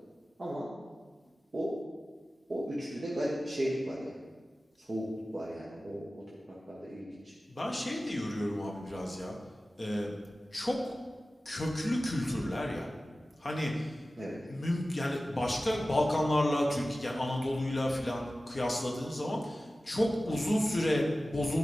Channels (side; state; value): both; normal; correlation 0.96